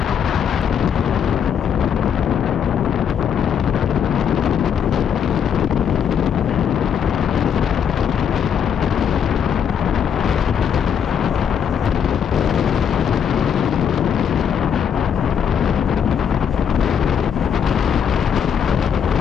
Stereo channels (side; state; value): right; quieter; 7.8 dB